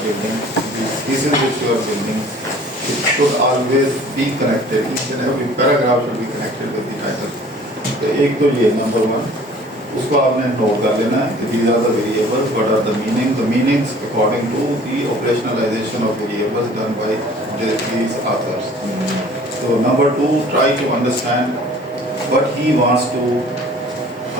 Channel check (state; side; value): normal; both; correlation 0.50